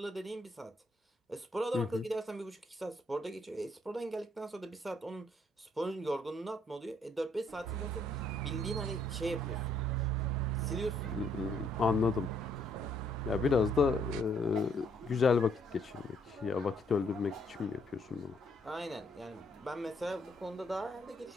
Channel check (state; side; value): normal; both; correlation 0.68